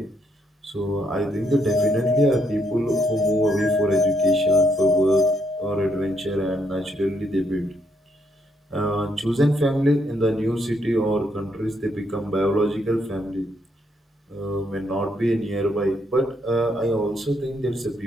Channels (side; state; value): both; normal; correlation 0.74